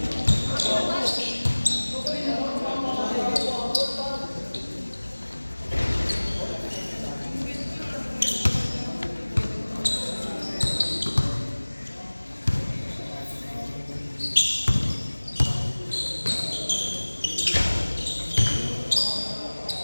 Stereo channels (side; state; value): both; inverted; correlation -1.00